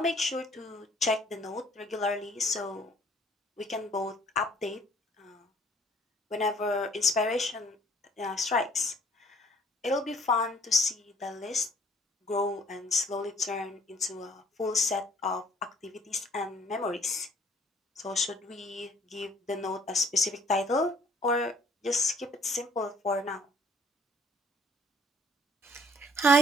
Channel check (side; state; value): both; normal; correlation 0.58